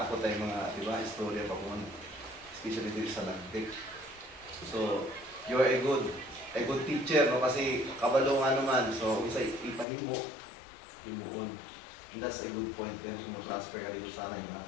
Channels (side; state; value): right; drops out; at 9.9 s